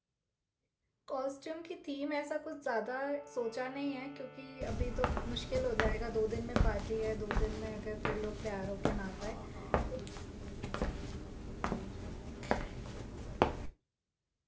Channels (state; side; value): identical; both; correlation 1.00